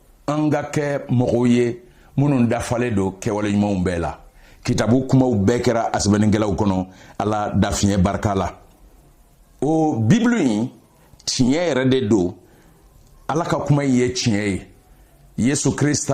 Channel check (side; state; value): both; identical; correlation 1.00